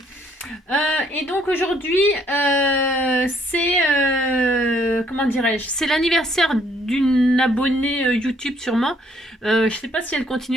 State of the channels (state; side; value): normal; both; correlation 0.66